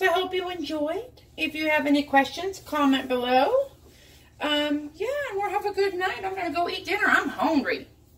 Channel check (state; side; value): identical; both; correlation 1.00